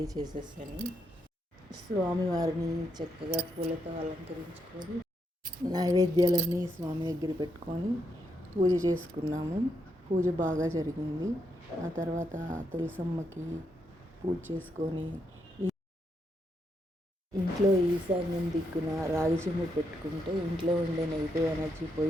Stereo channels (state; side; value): normal; both; correlation 0.80